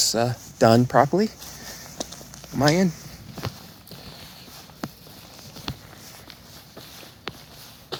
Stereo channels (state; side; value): identical; both; correlation 1.00